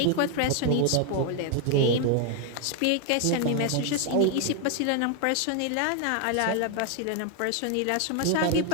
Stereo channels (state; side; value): different; both; correlation 0.01